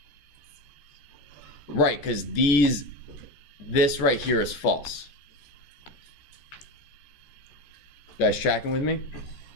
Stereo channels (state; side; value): late; right; 14 ms